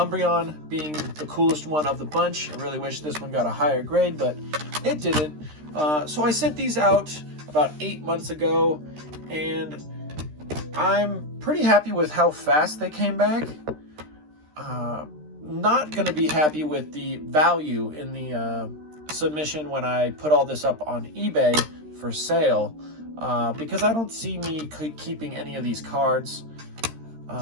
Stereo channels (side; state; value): left; late; 13 ms